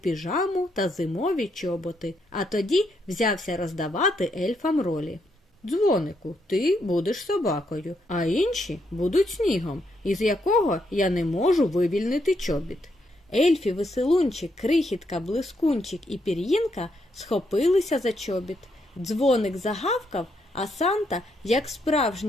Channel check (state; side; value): normal; both; correlation 0.77